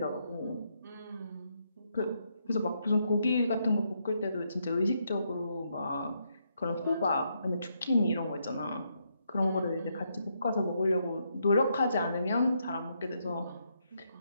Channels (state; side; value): inverted; both; correlation -0.78